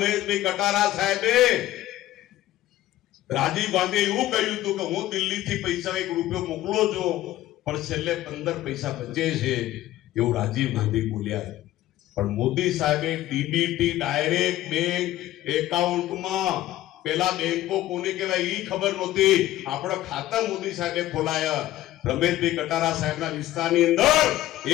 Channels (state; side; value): quieter; right; 14.8 dB